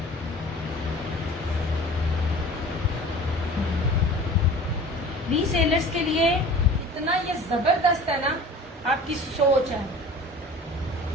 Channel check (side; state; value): both; normal; correlation 0.42